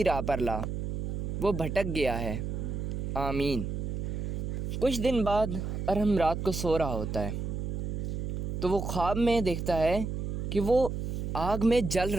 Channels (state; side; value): noise; right; hum, 3 dB below the sound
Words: راہ پر لا، وہ بھٹک گیا ہے، آمین۔ کچھ دن بعد ارحم رات کو سو رہا ہوتا ہے تو وہ خواب میں دیکھتا ہے کہ وہ آگ میں جل